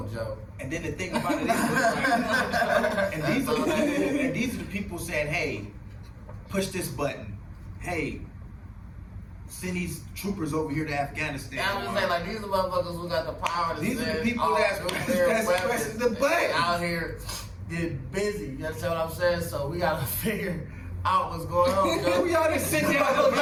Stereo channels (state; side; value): identical; both; correlation 1.00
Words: Joe. And then the thing about it is, and these are the people saying, "Hey, push this button. Hey, send these troopers over here to Afghanistan." Yeah, I'm just saying, like, these are motherfuckers who got the power to these send are the people all that's pressing the button out here getting busy. You understand what I'm saying? So we gotta figure out what's going on, Joe. Y'all done sent down the